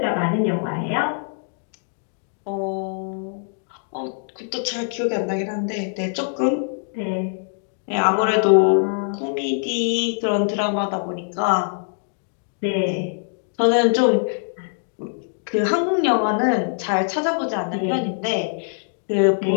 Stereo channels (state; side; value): silent; right; digital silence